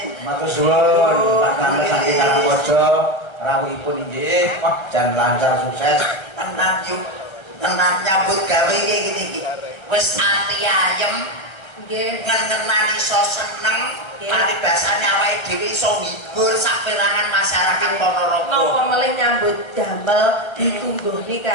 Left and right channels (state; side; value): late; right; 1.3 ms